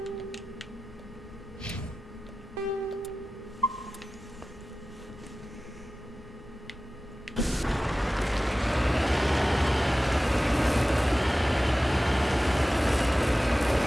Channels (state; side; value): normal; both; correlation 0.95